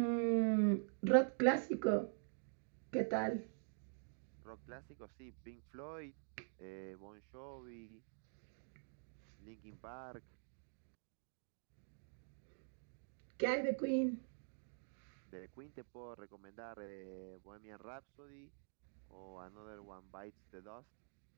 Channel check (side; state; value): left; silent; digital silence